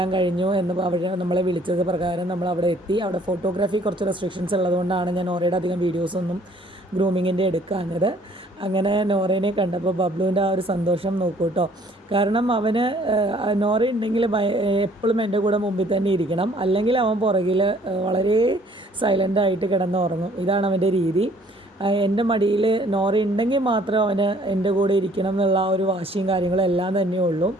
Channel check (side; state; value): both; normal; correlation 0.59